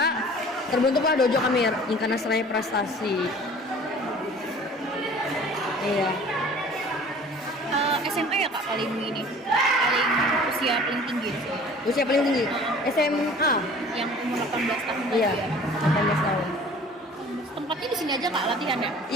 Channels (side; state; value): both; normal; correlation 0.47